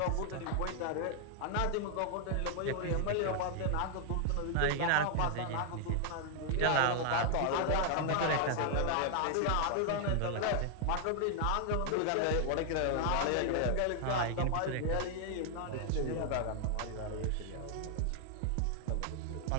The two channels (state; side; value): different; both; correlation 0.00